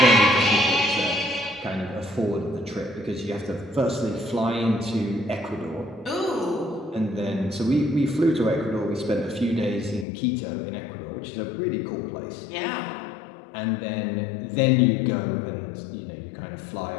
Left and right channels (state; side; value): drops out; right; at 10.1 s